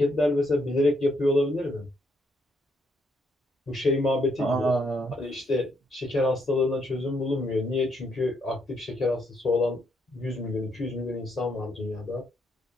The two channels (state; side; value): normal; both; correlation 0.75